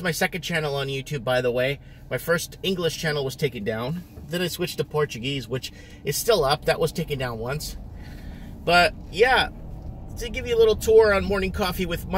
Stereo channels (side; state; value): both; identical; correlation 1.00